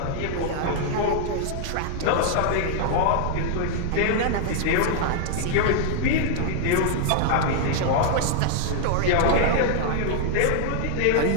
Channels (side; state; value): both; different; correlation 0.00